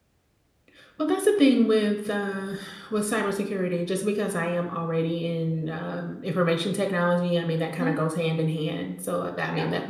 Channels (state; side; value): identical; both; correlation 1.00